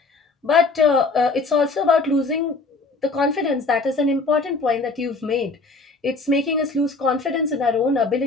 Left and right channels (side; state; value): right; quieter; 3.7 dB